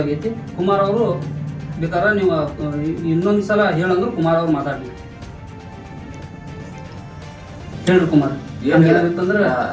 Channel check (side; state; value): both; identical; correlation 1.00